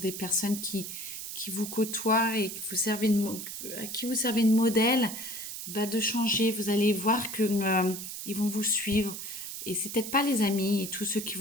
des personnes qui vous côtoient et que à qui vous servez de modèle, bah, de changer. Vous allez voir que ils vont vous suivre. Et c'est peut-être pas les amis et tous ceux qui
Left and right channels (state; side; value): noise; right; hiss, 8 dB below the sound